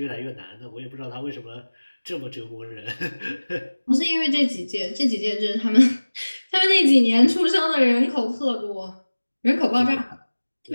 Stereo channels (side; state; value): both; inverted; correlation -1.00